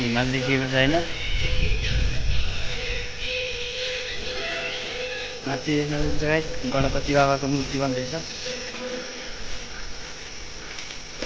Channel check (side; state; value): both; identical; correlation 1.00